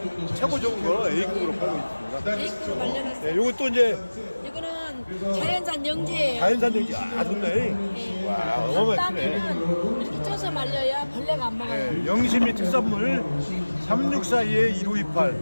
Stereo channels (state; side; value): inverted; both; correlation -1.00